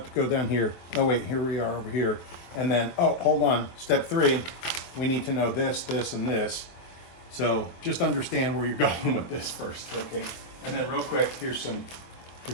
to go down here. Oh wait, here we are over here. And then, oh, hold on. Step 3, we need to know this, this, and this. So just understand where you're going with this first, okay? And then real quick, here's some,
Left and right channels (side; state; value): right; late; 23 ms